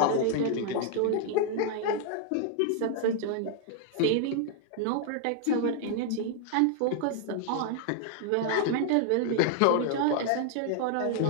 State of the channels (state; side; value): different; both; correlation 0.00